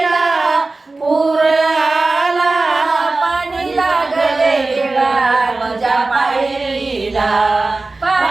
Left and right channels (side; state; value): left; quieter; 3.4 dB